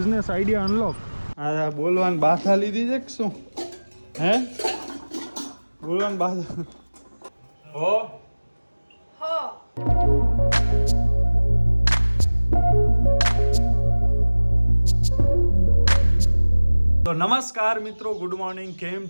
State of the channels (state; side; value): inverted; both; correlation -1.00